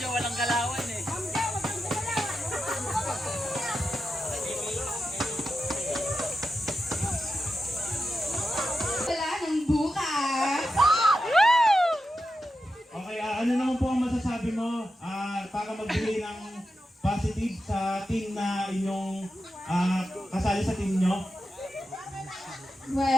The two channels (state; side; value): normal; both; correlation 0.90